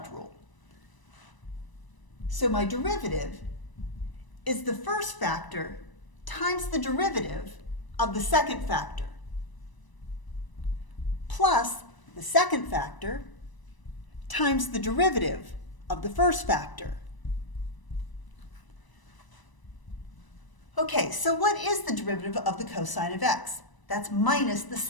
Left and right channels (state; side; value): late; right; 1.0 ms